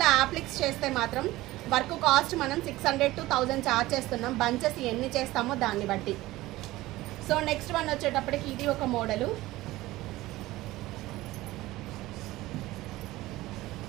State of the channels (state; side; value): quieter; left; 17.8 dB